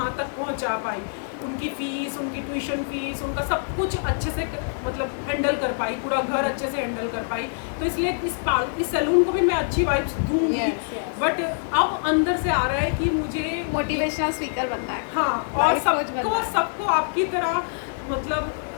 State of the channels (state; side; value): silent; right; digital silence